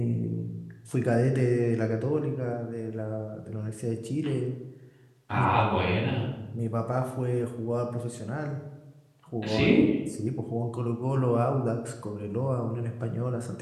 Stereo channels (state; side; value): identical; both; correlation 1.00